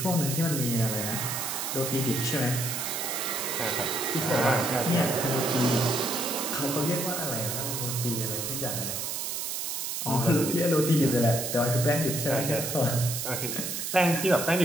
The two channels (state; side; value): noise; right; hiss, 3 dB below the sound